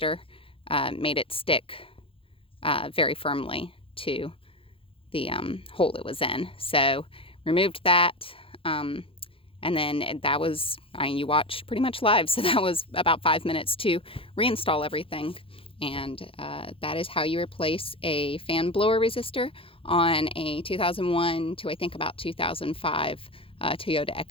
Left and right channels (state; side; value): late; right; 0.27 ms